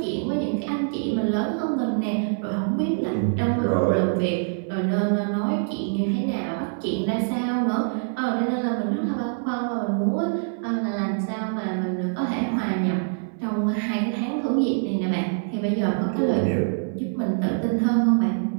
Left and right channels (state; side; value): silent; left; 62 dB below the other